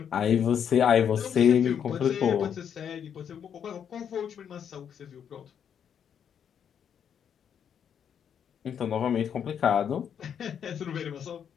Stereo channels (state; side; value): quieter; right; 8.2 dB